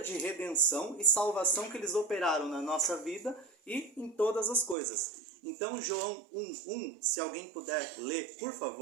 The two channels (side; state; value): left; drops out; at 4.8 s